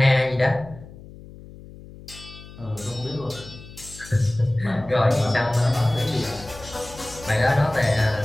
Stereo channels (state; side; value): noise; left; hum, 18 dB below the sound